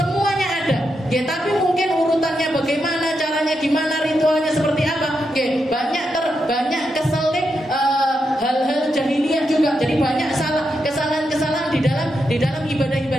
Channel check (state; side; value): normal; both; correlation 0.84